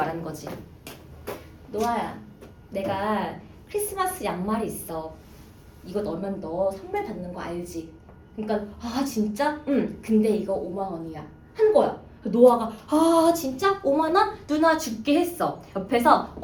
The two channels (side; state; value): both; identical; correlation 1.00